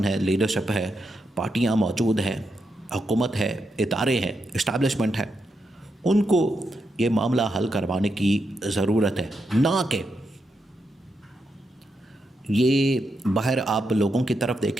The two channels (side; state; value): both; normal; correlation 0.84